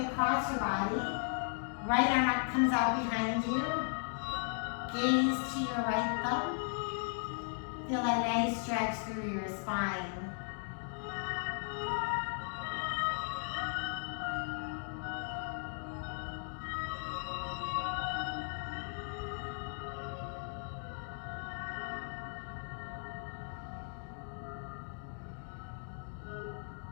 across your body. Right arm up comes out behind you. Gaze to your right thumb. Feel that nice stretch through your spine.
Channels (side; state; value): right; silent; 53 dB below the other